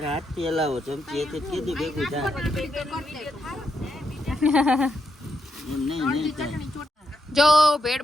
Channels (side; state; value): both; normal; correlation 0.81